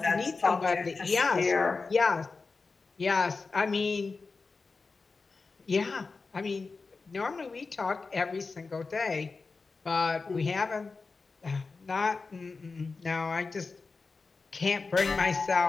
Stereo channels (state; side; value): quieter; right; 4.2 dB